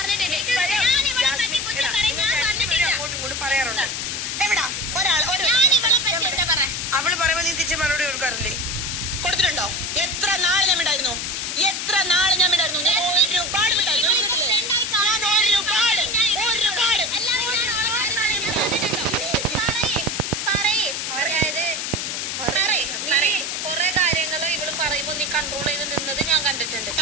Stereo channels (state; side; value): noise; left; hiss, 3 dB below the sound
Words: പറയാറുണ്ട്. എവിടാ ഒരാൾ അവള് പറയുമ്പോ നീ തിരിച്ച് മറുപടി കൊടുക്കാറില്ലേ? കൊടുത്തിട്ടുണ്ടോ? എത്ര നാള് ഞാൻ മിണ്ടായിരുന്നു, എത്ര നാള് ഞാൻ മിണ്ടായിരുന്നു. ഞാൻ ഒരുപാട് മിണ്ടായിരുന്നു. കൊറേ കാര്യങ്ങള് ഇവള് പറയുമ്പോ നീ കൺട്രോൾ ചെയ്ത് നിന്നത് ഞാൻ കണ്ടിട്ടുണ്ട്.